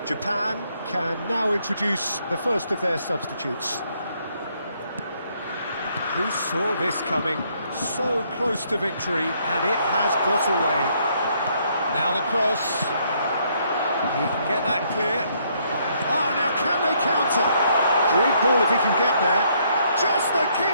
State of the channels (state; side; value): inverted; both; correlation -0.70